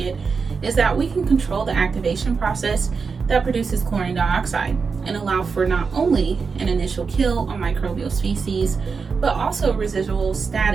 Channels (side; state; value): left; quieter; 5.2 dB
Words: is that we can control the activation process that produces chlorine dioxide and allow for not only an initial kill on microbial species, but also a residual